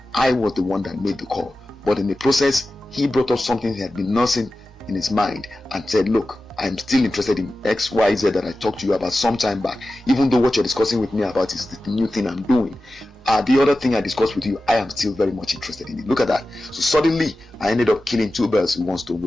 I was the one that made the call, but in the process he brought up something he had been nursing in his mind and said, look, I'm still interested in XYZ that I talked to you about some time back, even though what you're discussing with me about is the new thing I'm doing. The other thing I discussed with you, I am still very much interested in it. Look at that. So suddenly I ended up killing two birds with one stone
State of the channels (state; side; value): normal; both; correlation 0.94